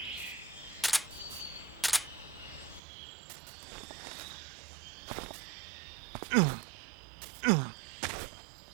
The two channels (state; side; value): drops out; left; at 2.8 s